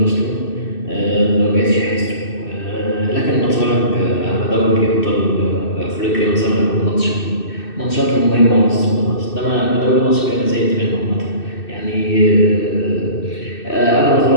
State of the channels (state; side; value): late; right; 2.6 ms